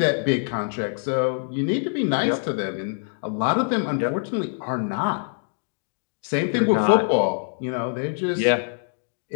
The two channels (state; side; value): silent; right; 62 dB below the other